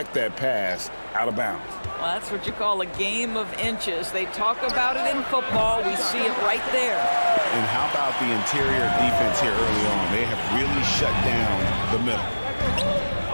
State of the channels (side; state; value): both; inverted; correlation -1.00